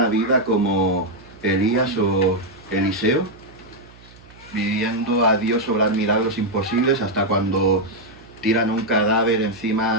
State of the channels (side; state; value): right; noise; hum, 23 dB below the sound